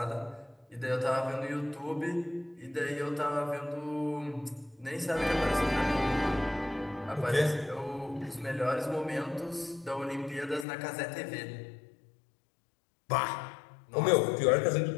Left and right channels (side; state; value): right; drops out; at 10.7 s